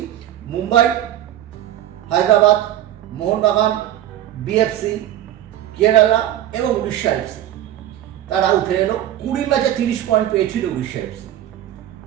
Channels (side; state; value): left; quieter; 12.3 dB